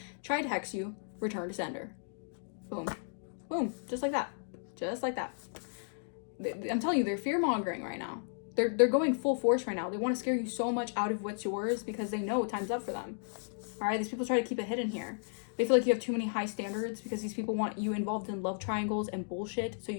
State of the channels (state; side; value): silent; right; digital silence